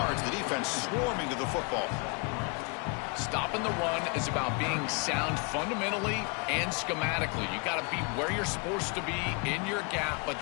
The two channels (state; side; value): quieter; right; 32.9 dB